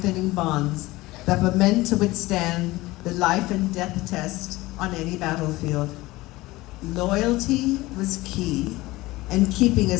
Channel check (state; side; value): quieter; right; 19.5 dB